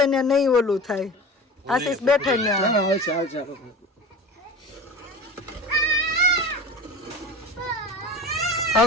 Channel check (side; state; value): both; normal; correlation 0.34